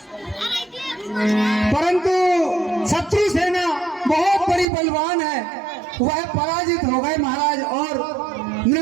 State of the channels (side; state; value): left; drops out; at 4.7 s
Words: शत्रु सेना बहुत बड़ी बलवान है, वह पराजित हो गए महाराज और